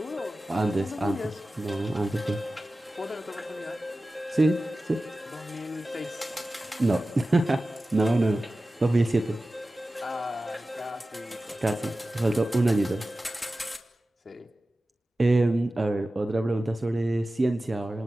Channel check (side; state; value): both; normal; correlation 0.95